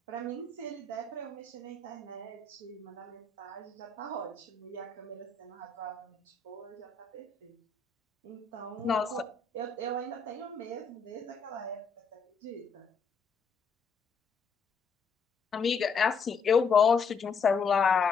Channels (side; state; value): right; quieter; 5.0 dB